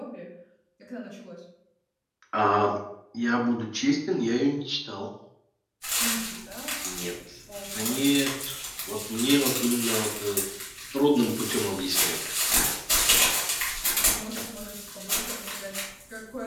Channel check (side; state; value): both; identical; correlation 1.00